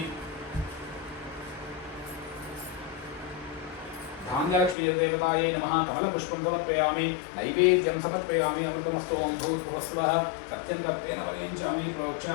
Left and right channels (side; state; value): right; drops out; at 4.8 s